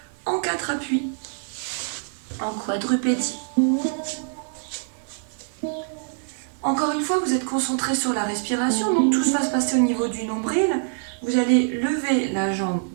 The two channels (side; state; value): left; silent; 62 dB below the other